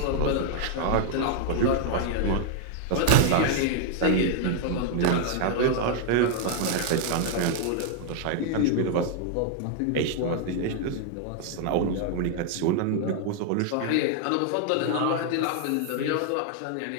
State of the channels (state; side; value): different; both; correlation 0.00